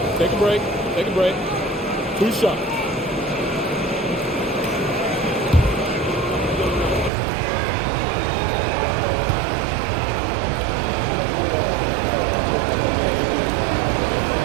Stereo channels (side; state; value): left; drops out; at 7.1 s